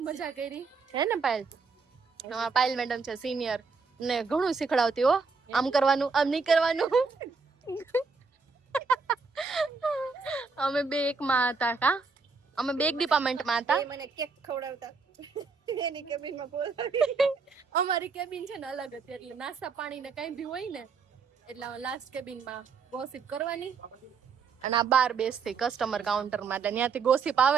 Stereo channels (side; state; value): left; quieter; 4.9 dB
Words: મજા કરી હે ને પાયલ. પાયલ મેડમ છે સિનિયર ને ઘણું શીખડાવતી હો. આમ કરવાનું આમ નહીં કરવાનું. અમે બે એકમાં હતા. કા અમે બે એક ડિપાર્ટમેન્ટમાં હતા. મને કેક ખવડાવતા એની કેબિનમાં બોલાવી. અમારી કેબિન છે ને અલગ હતી એટલે નાસ્તા પાણી ને કઈ બી હોય ને એટલે લાસ્ટ કેબિનમાં ગોસિપ કરવાની અને આ બાર બેસતી કસ્ટમર કાઉન્ટર માં. એટલે ત્યાંથી ગોસિપ